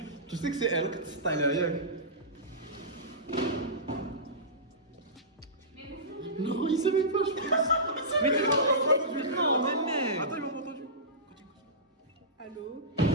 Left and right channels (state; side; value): normal; both; correlation -0.19